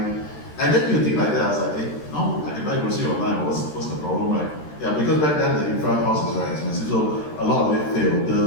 And then you think like that, I was like, hey, no, I can buy groceries online, what's the problem, right? Yeah, because back then the infra cost is very expensive, so a lot of it failed.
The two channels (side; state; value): right; late; 13 ms